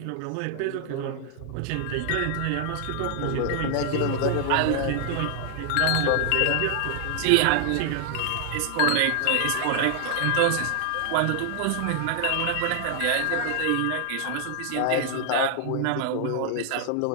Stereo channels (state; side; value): different; both; correlation 0.00